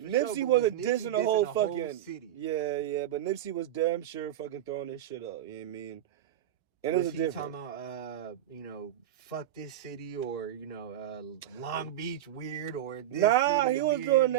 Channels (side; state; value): left; quieter; 12.2 dB